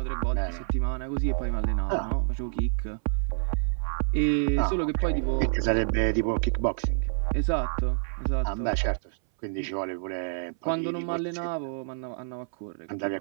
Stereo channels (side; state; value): left; silent; 59 dB below the other